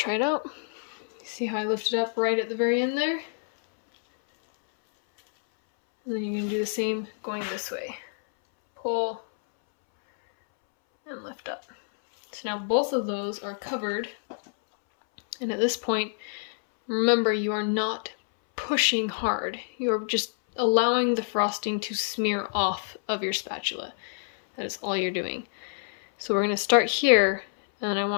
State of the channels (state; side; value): silent; right; 60 dB below the other